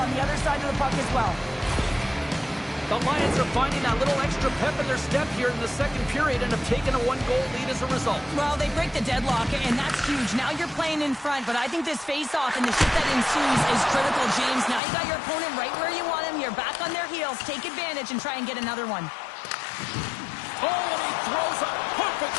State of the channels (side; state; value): right; drops out; at 14.8 s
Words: the other side of the puck as well. The Lions are finding that little extra pep in their step here in the second period and have taken a one-goal lead as a result. Well, they break the deadlock, and that's huge. Now you're playing in front, but I think this face-off and the shit that ensues is critical, James. Now you got your opponent right where you want him. You're back on their heels. Take advantage and try and get another one. Oh, and he throws a